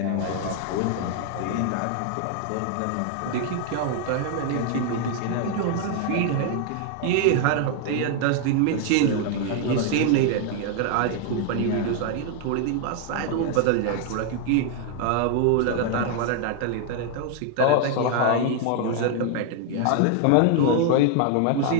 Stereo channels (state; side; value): different; both; correlation 0.00